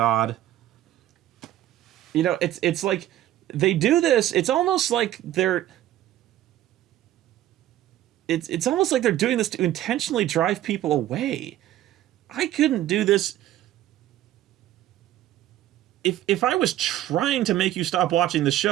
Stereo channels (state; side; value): quieter; left; 13.4 dB